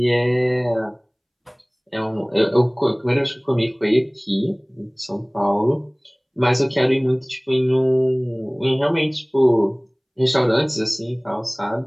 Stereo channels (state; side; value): identical; both; correlation 1.00